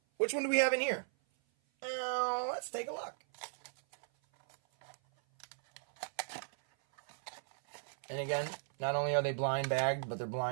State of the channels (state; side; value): silent; left; 54 dB below the other